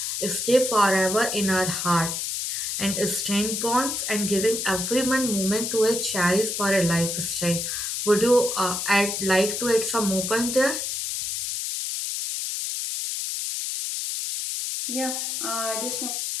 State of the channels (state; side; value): noise; left; hiss, 2 dB below the sound